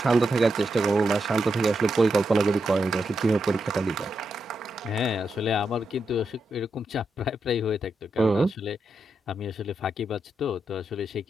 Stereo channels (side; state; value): both; normal; correlation 0.85